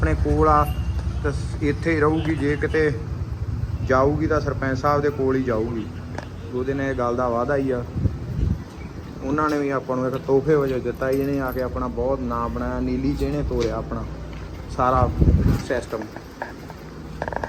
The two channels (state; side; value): identical; both; correlation 1.00